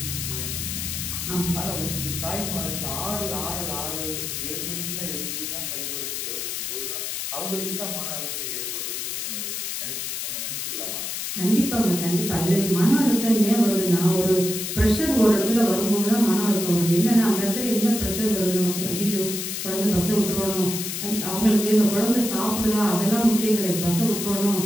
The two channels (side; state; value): left; noise; hiss, 4 dB below the sound